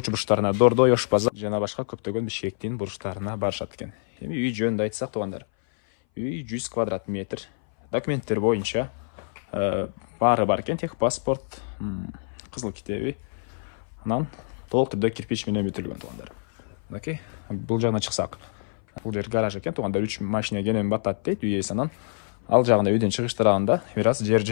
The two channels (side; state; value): right; silent; 59 dB below the other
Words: Дордой, Ош базар жана башка көптөгөн Бишкектин бурчтарына барышат экен. Эми үй жөнүндө айтсак тугандар, үй 100 квадрат метр. Документтер боюнча баары бар экен, тех паспорт, кызыл китеби. Анан толук түрдө кирпич менен бүтүлгөн тугандар. Мынакей, бул жагына чыксак, бул жер гараж экен тугандар. 3 машина кенен батат дейт үй ээси. Анан ал жагында үйдөн чыгыш тарабында бир аз жер